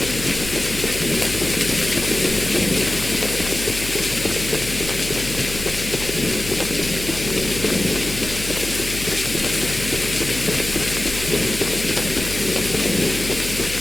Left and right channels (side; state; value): left; noise; hum, 10 dB below the sound